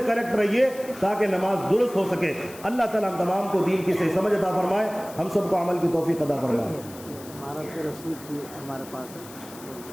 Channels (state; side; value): noise; left; hiss, 18 dB below the sound